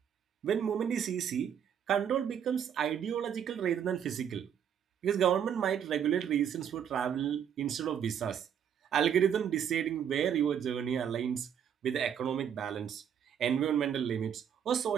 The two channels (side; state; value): left; quieter; 8.6 dB